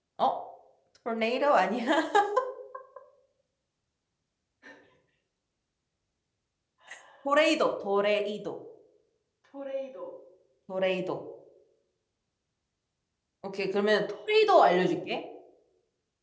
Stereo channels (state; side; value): identical; both; correlation 1.00